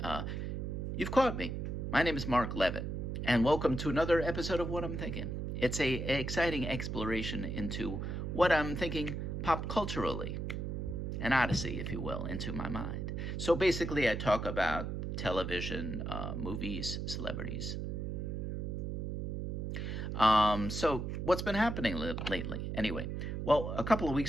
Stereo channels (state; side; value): noise; right; hum, 3 dB below the sound